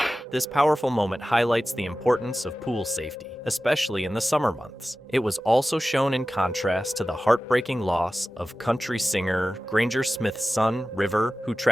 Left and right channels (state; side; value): normal; both; correlation 0.95